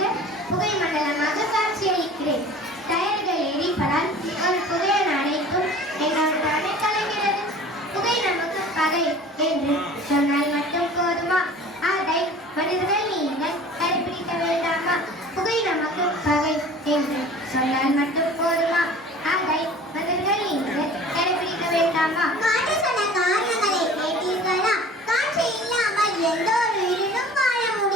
புகை மண்டலமாக காட்சியளிக்கிறேன். டயர்கள் எரிப்பதால் ஒரு புகையை அடைக்கும் என்னோட தடை கலைகிறது. புகை நமக்கு பகை என்று சொன்னால் மட்டும் போதுமா? அதை மனிதர்கள் நீங்கள் கடைபிடிக்க வேண்டாமா? புகை நமக்கு பகை என்று சொன்னால் மட்டும் போதுமா? அதை மனிதர்கள் நீங்கள் கடைபிடிக்க வேண்டாமா? காற்று சொன்ன காரணங்களை கேட்டீர்களா? காற்று இல்லாமல் எந்த ஒரு உயிரினும் வாழ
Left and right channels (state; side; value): normal; both; correlation 0.44